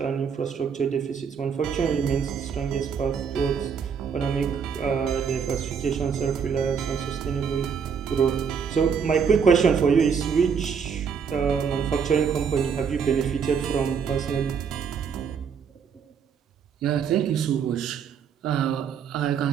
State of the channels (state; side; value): quieter; left; 6.7 dB